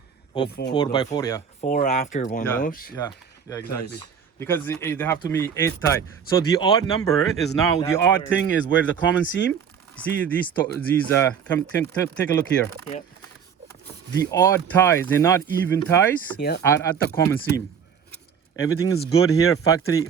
4x4, yeah. 4 after one of those. Yeah, exactly. Because they have to be 8 tie. So the odd number is now the odd thing is where the common seam. See these come take a look here. Yep. The odd ties, they're not even ties, Yep. are at the common seam. Everything is good here, factory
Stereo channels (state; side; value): quieter; left; 7.3 dB